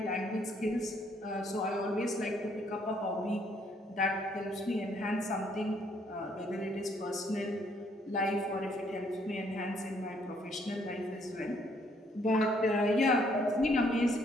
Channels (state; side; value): normal; both; correlation 0.67